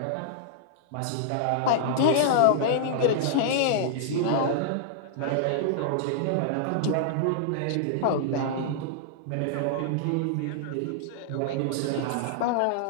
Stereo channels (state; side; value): different; both; correlation -0.01